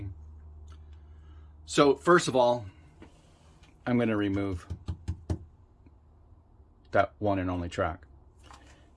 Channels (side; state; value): both; identical; correlation 1.00